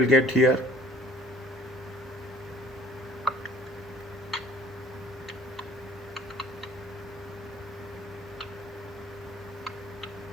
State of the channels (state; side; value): normal; both; correlation 0.54